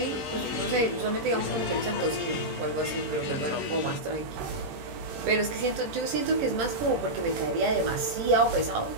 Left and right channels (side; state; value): left; late; 18 ms